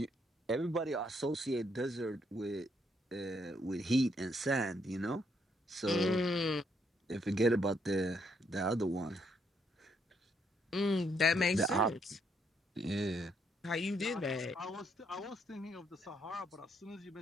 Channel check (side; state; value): both; normal; correlation 0.73